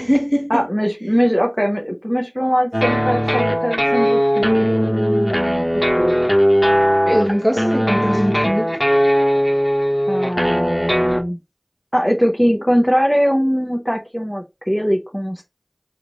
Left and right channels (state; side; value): identical; both; correlation 1.00